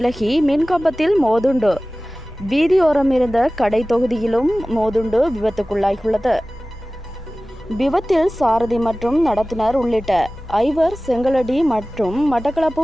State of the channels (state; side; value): normal; both; correlation 0.97